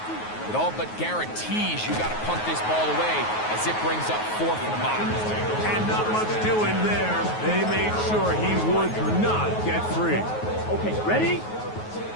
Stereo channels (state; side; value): late; right; 9.4 ms